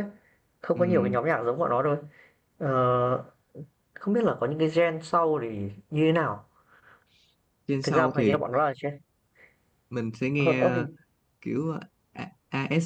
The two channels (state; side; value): identical; both; correlation 1.00